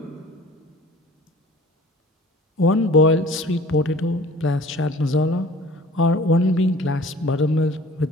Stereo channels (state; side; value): normal; both; correlation 0.47